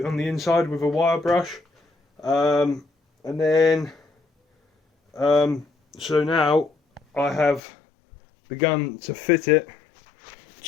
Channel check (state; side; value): drops out; right; at 7.6 s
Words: the inside with a wire brush, and then so now I have begun to fit it